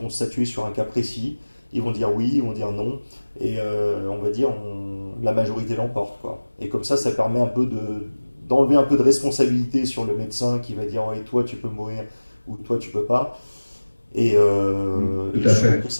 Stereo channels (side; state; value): both; inverted; correlation -1.00